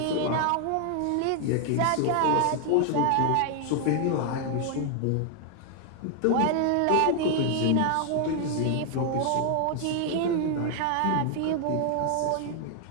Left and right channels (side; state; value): both; different; correlation 0.00